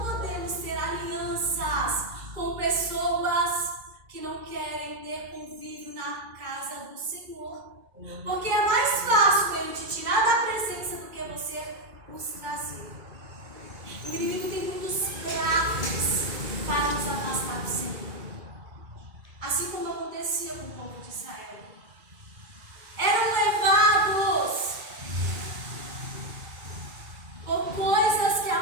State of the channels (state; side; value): late; left; 2.3 ms